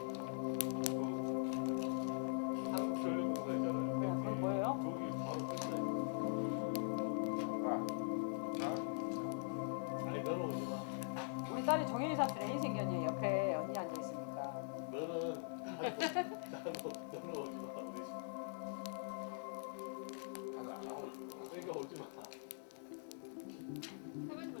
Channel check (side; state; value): right; silent; digital silence